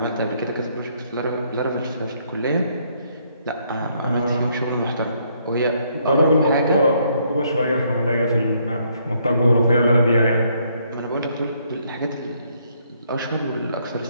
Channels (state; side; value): inverted; both; correlation -0.70